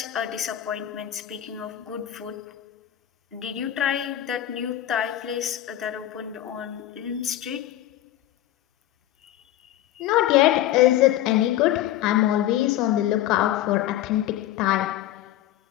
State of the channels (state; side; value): quieter; right; 13.1 dB